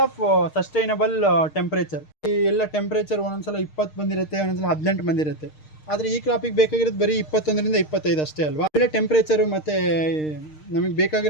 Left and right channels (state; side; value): late; right; 6.5 ms